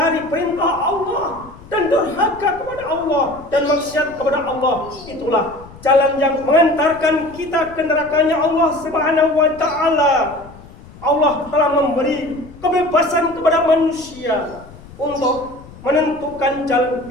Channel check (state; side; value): noise; left; rumble, 20 dB below the sound